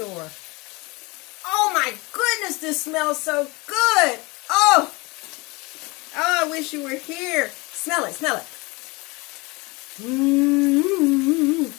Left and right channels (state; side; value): quieter; right; 25.2 dB